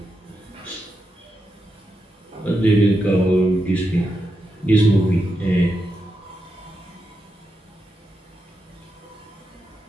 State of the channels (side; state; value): both; normal; correlation 0.86